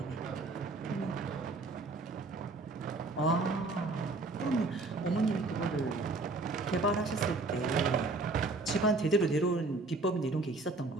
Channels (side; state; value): left; quieter; 3.3 dB